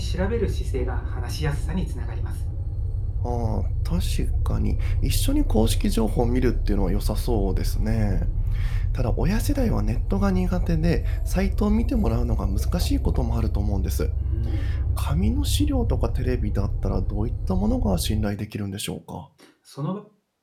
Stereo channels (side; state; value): both; identical; correlation 1.00